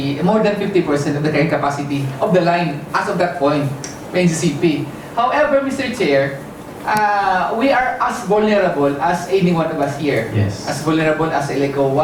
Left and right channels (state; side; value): identical; both; correlation 1.00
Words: more than 50% of the carrying capacity of the line as of that point, NCCP. However, Mr. Chair, we are as vulnerable as any one of us here. Yes. As vulnerable as Eleco